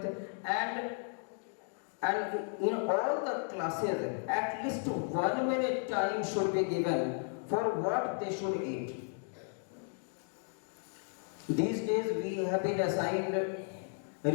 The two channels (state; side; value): silent; right; 55 dB below the other